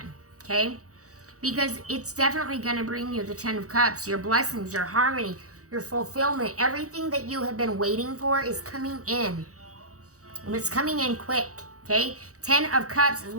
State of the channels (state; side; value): late; left; 0.65 ms